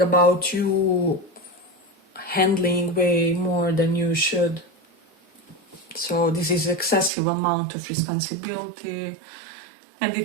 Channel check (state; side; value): drops out; left; at 7.1 s